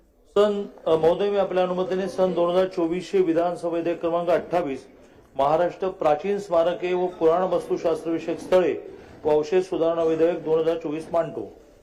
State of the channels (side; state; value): both; identical; correlation 1.00